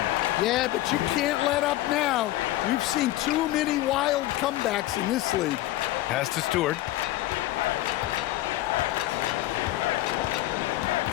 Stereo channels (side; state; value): right; quieter; 16.0 dB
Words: Yeah, but you can't let up now. We've seen too many wild comebacks in this league. Pass to Stewart.